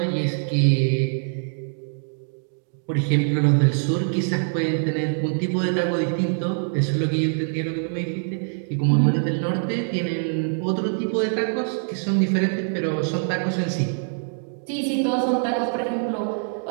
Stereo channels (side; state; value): left; silent; digital silence